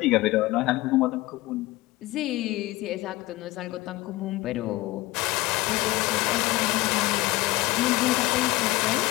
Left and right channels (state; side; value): quieter; right; 19.6 dB